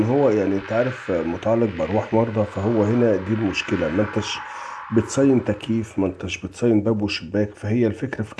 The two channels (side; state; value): both; identical; correlation 1.00